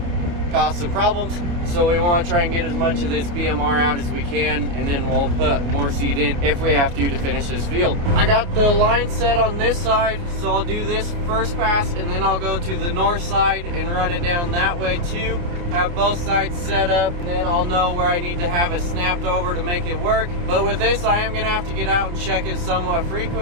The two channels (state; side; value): late; left; 28 ms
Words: cause some problems. So we want to try and get as much of this BMR out as we can, and then we'll put more seed in if we have to finish this field. I got the line set on this side, so I'll do this first pass, and then I'll go to the north side and run it down that way too. Have both sides set up, and then I'll know where I need to have it snapped over to make it work. But with this, I am gonna have to get out and check it somewhat